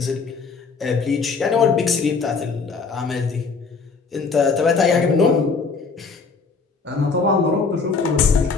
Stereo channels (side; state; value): right; quieter; 4.7 dB